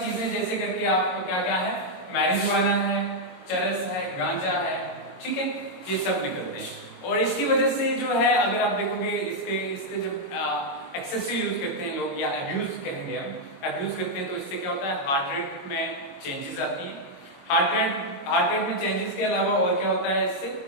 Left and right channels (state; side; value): late; right; 22 ms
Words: जैसे करके आपको क्या क्या है, मैरिजुआना है, चरस है, गांजा है, ठीक है, ये सब निकलते हैं। और इसकी वजह से जो है, अगर आप देखोगे इसके जब एक्सेसिव यूज करते हैं लोग, या अब्यूज कहेंगे हम, अब्यूज करते हैं, तो इससे क्या होता है, हार्ट रेट में चेंजेस आती है। हार्ट रेट में चेंजेस के अलावा और क्या होता है,